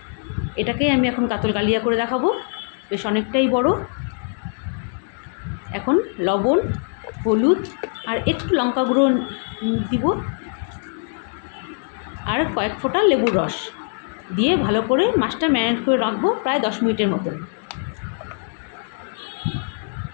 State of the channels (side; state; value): right; silent; 62 dB below the other